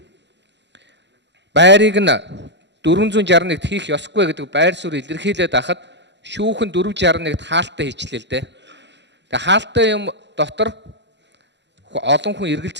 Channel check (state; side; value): late; left; 0.52 ms